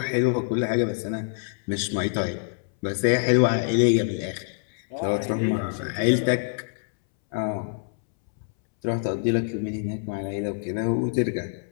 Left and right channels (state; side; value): silent; right; 61 dB below the other